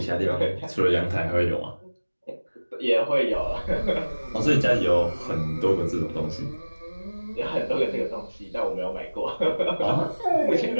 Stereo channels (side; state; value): both; inverted; correlation -1.00